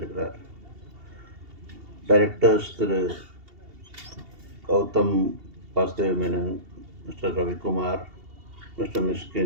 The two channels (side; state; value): left; late; 2.7 ms